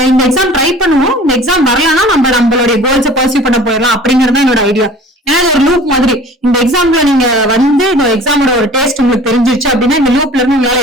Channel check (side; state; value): both; normal; correlation 0.46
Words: இந்த எக்ஸாம் ட்ரை பண்ணுவோம், இந்த எக்ஸாம் வரலன்னா நம்மளுடைய கோல்ஸை பர்சியூ பண்ண போயிடலாம் அப்படிங்கறது என்னோட ஐடியா. ஏன்னா இது ஒரு லூப் மாதிரி. இந்த எக்ஸாம்ல நீங்க வந்து இந்த எக்ஸாமோட ஒரு டேஸ்ட் உங்களுக்கு தெரிஞ்சிருச்சு அப்படின்னா இந்த லூப்ல இருந்து